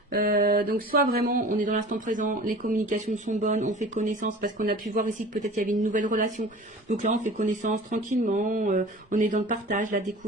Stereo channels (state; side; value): normal; both; correlation 0.41